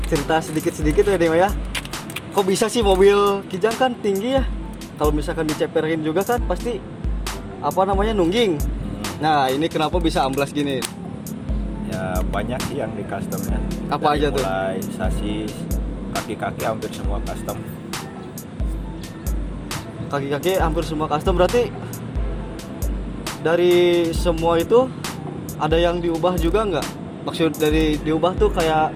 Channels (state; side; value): identical; both; correlation 1.00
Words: cerita sedikit-sedikit ya Dik ya. Kok bisa sih mobil Kijang kan tinggi ya? Kalau misalkan diceperin juga kan pasti apa namanya, nungging. Nah ini kenapa bisa amblas gini? Ya banyak sih yang di customnya. Apa aja tuh? Mulai sasis, kaki-kaki hampir semua custom. Kaki-kaki hampir semua custom, berarti dari semua itu ada yang diubah juga nggak? Maksud dari diubah tuh kayak,